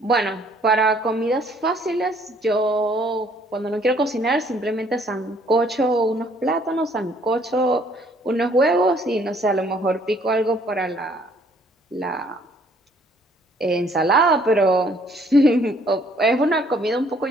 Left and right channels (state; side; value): normal; both; correlation 0.62